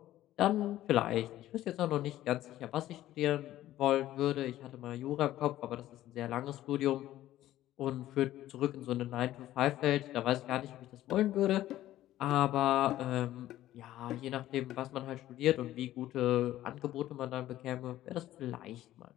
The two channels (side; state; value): right; quieter; 14.0 dB